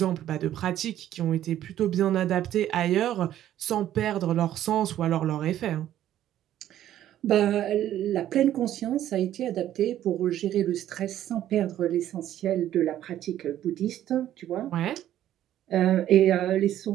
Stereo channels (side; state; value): left; quieter; 12.1 dB